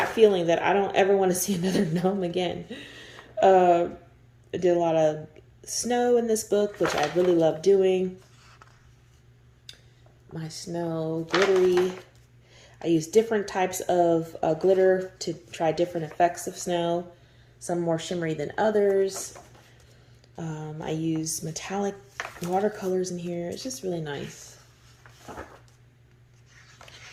feeling that I don't ever want to see another gnome again. I did a lot of snow in this book, which I really love doing. My snow glittery. I use different types of glitter to try different effects of snow. Some more shimmery than others. I use metallic watercolors in here. It's just really nice.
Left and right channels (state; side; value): identical; both; correlation 1.00